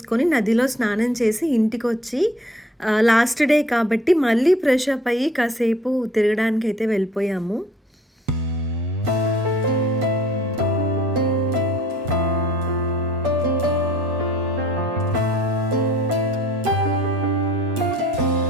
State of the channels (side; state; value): both; normal; correlation 0.55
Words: నదిలో స్నానం చేసి ఇంటికి వచ్చి లాస్ట్ డే కాబట్టి మళ్ళీ ఫ్రెష్ అప్ అయ్యి కాసేపు తిరగడానికి అయితే వెళ్ళిపోయాము.